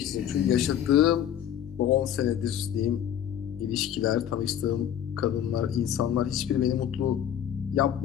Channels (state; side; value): quieter; right; 10.0 dB